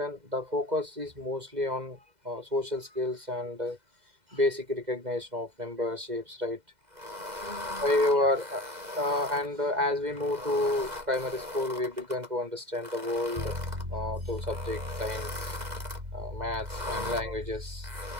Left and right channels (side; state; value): left; late; 2.0 ms